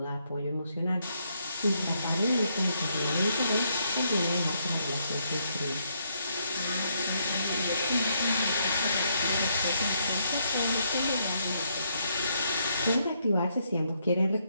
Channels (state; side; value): inverted; both; correlation -0.75